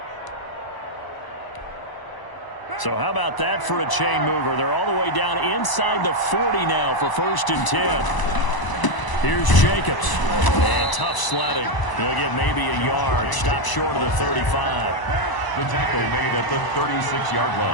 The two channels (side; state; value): right; late; 1.0 ms